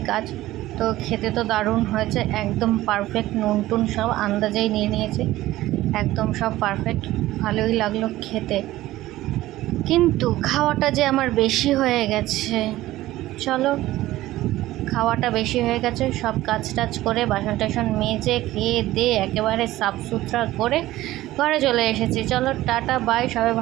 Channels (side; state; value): left; quieter; 16.1 dB